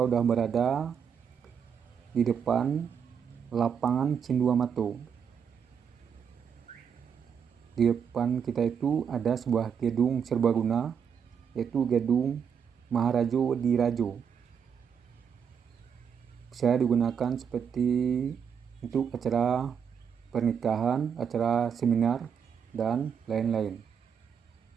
udah berada di depan lapangan Cinduamato. Di depan kita itu ada sebuah gedung serbaguna, yaitu gedung Maharajo di Rajo. Bisa digunakan seperti untuk acara pernikahan, acara seminar, dan lain-lain.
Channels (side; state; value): left; quieter; 7.3 dB